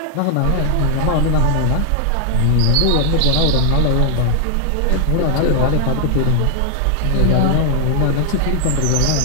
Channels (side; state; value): both; different; correlation 0.00